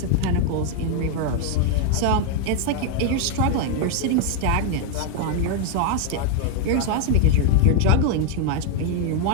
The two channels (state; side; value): different; both; correlation 0.00